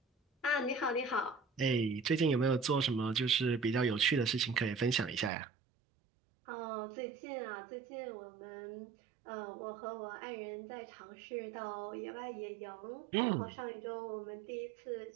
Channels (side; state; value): left; drops out; at 5.3 s